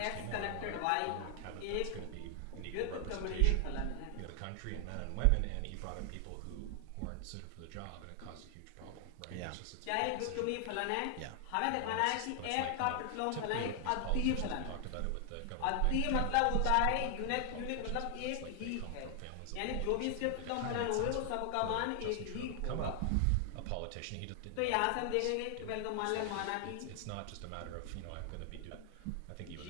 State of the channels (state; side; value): different; both; correlation 0.00